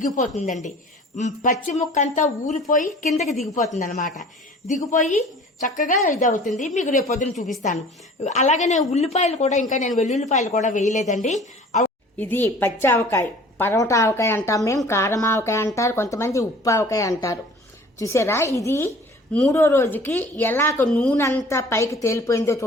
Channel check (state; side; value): normal; both; correlation 0.47